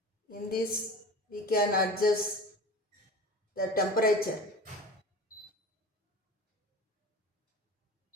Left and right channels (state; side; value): normal; both; correlation 0.35